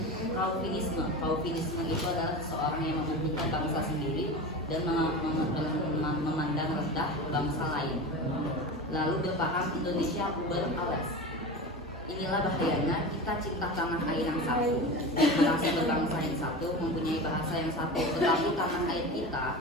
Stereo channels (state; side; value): normal; both; correlation 0.28